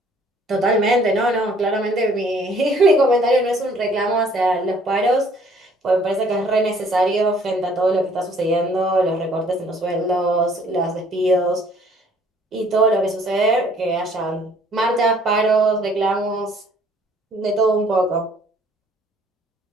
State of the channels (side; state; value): both; normal; correlation 0.59